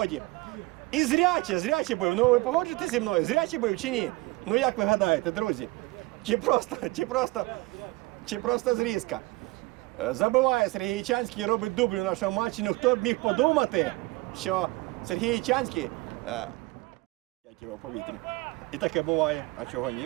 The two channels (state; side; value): quieter; left; 22.4 dB